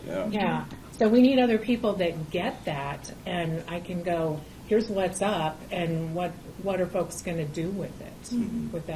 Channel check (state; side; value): identical; both; correlation 1.00